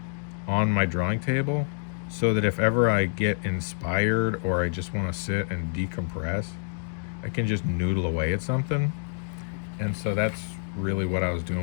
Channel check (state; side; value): silent; right; digital silence